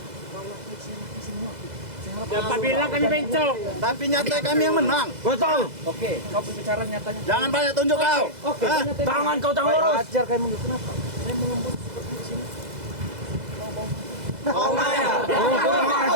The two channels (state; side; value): late; left; 2.0 ms